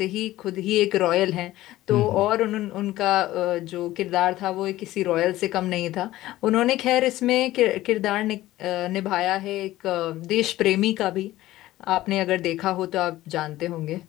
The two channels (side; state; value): right; quieter; 15.9 dB